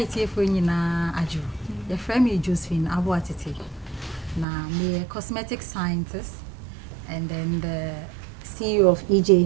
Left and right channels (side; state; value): left; drops out; at 4.5 s